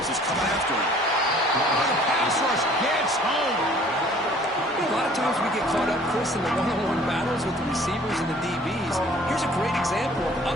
is coming after him. The pass rush gets home. A lot of times we get caught up, Chris, in the one-on-one battles with the receivers and the DBs. Here's a great example of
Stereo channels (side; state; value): both; normal; correlation 0.53